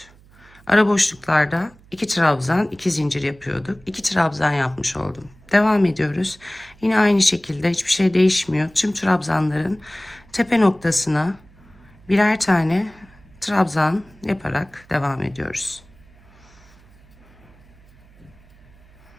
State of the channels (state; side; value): noise; right; hum, 27 dB below the sound